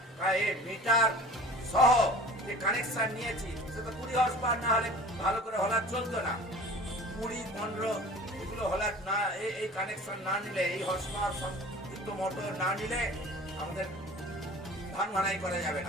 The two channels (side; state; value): both; normal; correlation 0.42